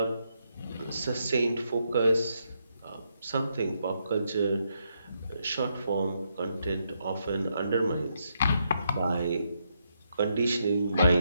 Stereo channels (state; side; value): inverted; both; correlation -0.80